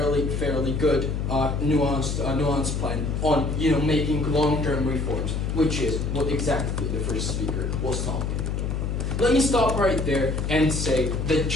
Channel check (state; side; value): noise; left; hum, 1 dB below the sound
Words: nuanced plan on, making long-term reforms, which is what exactly the first speaker was talking. Let me stop right there and say that